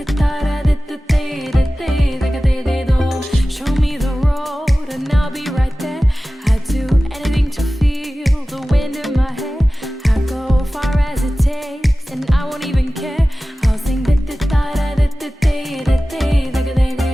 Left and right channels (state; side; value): normal; both; correlation 0.96